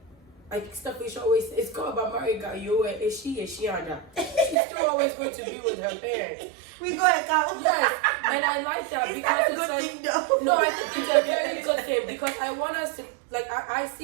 stuff we should always, it's called about married guy. Is she Ada? She's still always going to be with her parents. We go and count. Yes, and I like that because it's like, thing though? No, I think it's a very good thing because I want us to like I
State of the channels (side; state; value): left; drops out; at 4.5 s